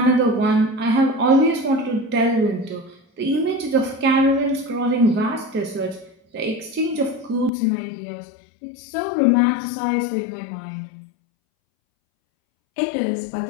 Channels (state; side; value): drops out; right; at 7.5 s